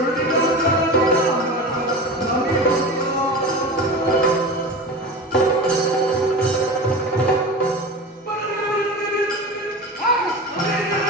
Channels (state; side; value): normal; both; correlation 0.30